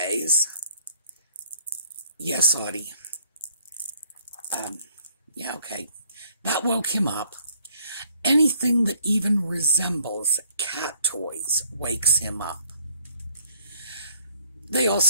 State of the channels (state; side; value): inverted; both; correlation -0.63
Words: Yes, Audie. Yeah, okay. That woke him up. Anything that even resembles cat toys wakes him up. They